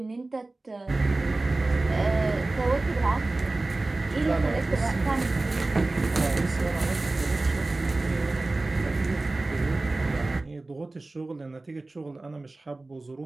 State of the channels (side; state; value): left; quieter; 3.1 dB